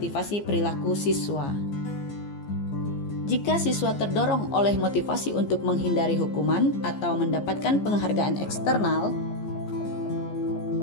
perilaku siswa. Jika siswa terdorong oleh motivasi untuk menghindari hukuman atau mendapatkan penghargaan eksternal,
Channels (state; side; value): late; right; 15 ms